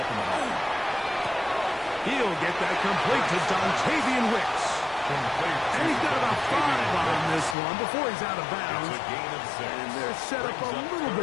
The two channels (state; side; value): drops out; right; at 7.6 s